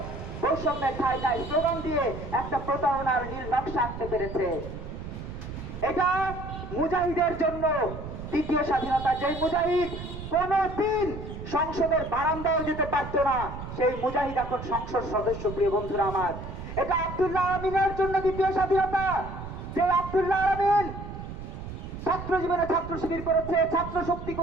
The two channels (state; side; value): noise; right; rumble, 9 dB below the sound